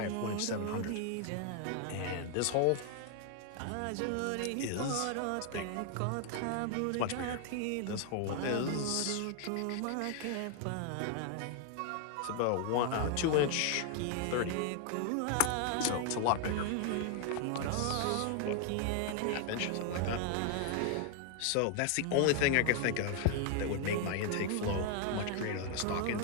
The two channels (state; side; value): different; both; correlation 0.00